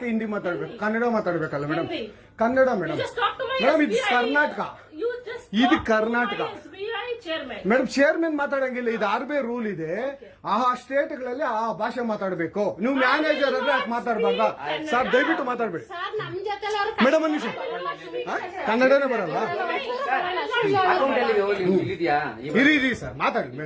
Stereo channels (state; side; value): identical; both; correlation 1.00